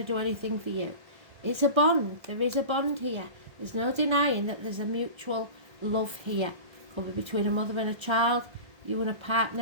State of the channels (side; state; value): left; late; 1.3 ms